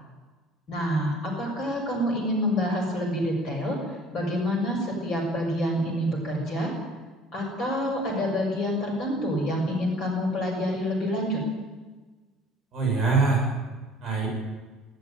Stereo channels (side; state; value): both; normal; correlation 0.52